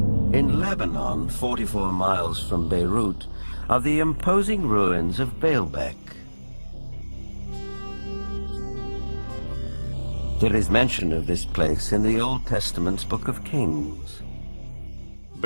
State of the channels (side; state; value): both; inverted; correlation -1.00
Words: Lebanon, 44 miles from Beirut, are the imposing ruins of Baalbek. There is mention of this place in the Old Testament's Book of Kings.